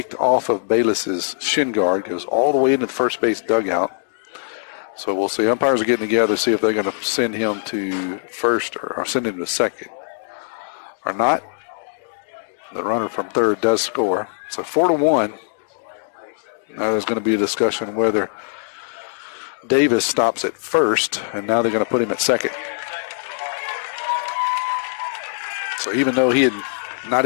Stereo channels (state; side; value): silent; right; digital silence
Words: off of Bayless's shin guard, goes all the way into the first base dugout. So we'll see. Umpires are getting together, see if they're going to send him to first or send him to second or not. The runner from third does score. So 4-1. Now there's going to be a discussion whether Davis stops at first, and now they're going to put him at second. So even though he had not